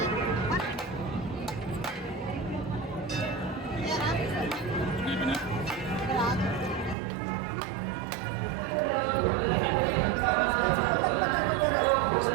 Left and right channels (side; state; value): left; drops out; at 7.0 s